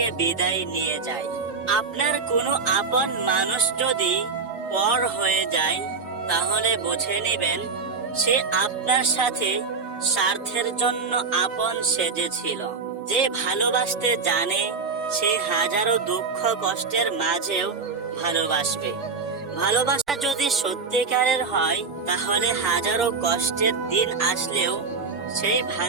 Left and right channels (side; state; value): left; quieter; 4.7 dB